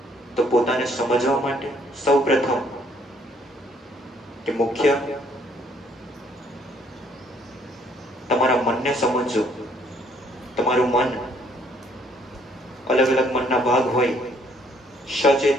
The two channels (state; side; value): normal; both; correlation 0.65